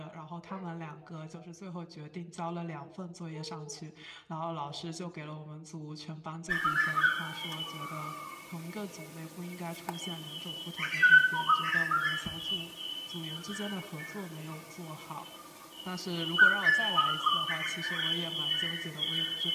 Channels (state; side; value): identical; both; correlation 1.00